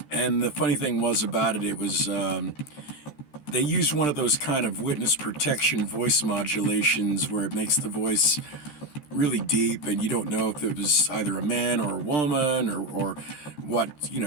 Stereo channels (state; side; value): late; right; 13 ms